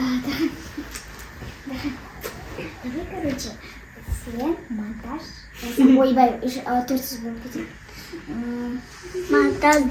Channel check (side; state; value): both; identical; correlation 1.00